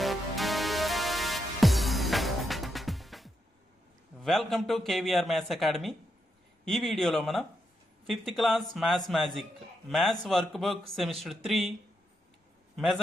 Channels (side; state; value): both; normal; correlation 0.82